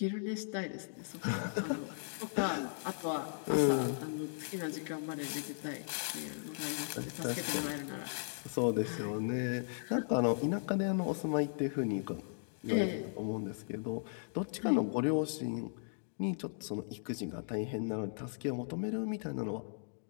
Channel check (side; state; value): right; silent; digital silence